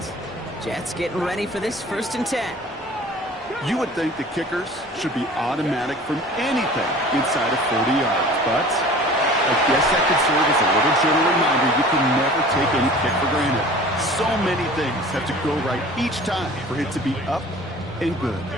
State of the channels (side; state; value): both; normal; correlation 0.44